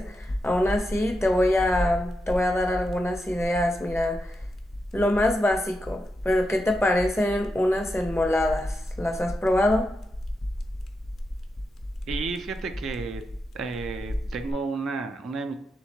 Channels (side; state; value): both; normal; correlation 0.87